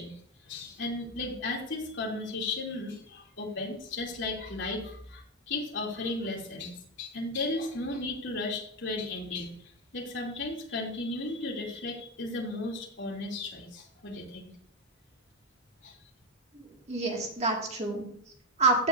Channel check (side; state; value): both; normal; correlation 0.10